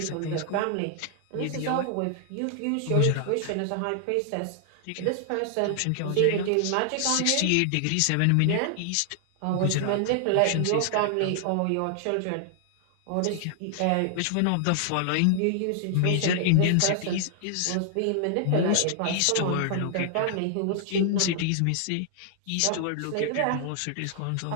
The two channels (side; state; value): both; different; correlation 0.00